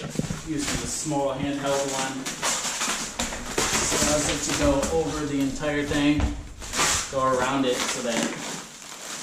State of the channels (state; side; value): identical; both; correlation 1.00